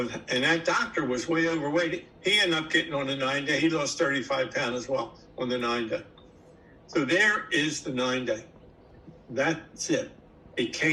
that doctor was way overweight. He ended up getting on the 9-day. He lost 35 pounds as well on the 9-day. So there is the 9-day. That's it. It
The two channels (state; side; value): identical; both; correlation 1.00